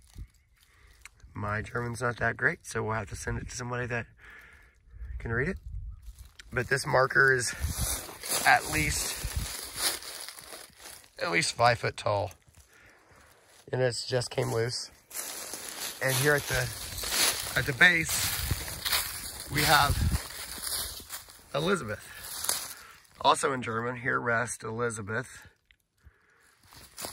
My German's not that great, so we'll have to send it to somebody that can read it. But this marker is at least 5 foot tall, and it's just came loose. And here at the base, we have Elizabeth. Also in German, here rest Elizabeth.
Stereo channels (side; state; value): both; identical; correlation 1.00